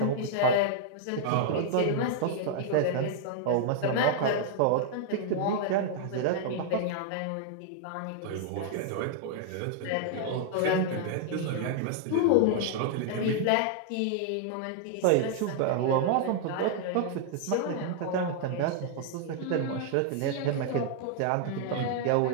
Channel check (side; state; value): both; different; correlation 0.00